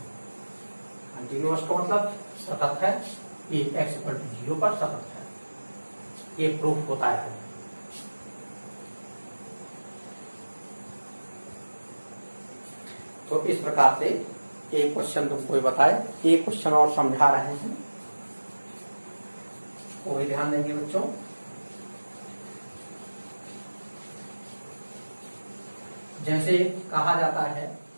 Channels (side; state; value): both; inverted; correlation -1.00